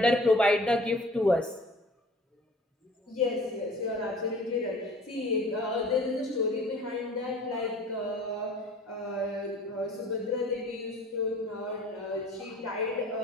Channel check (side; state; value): both; normal; correlation 0.47